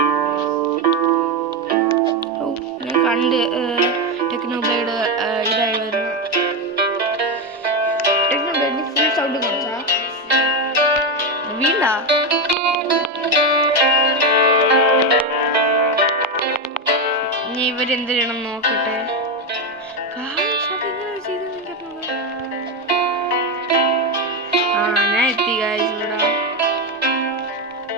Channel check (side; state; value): both; normal; correlation 0.11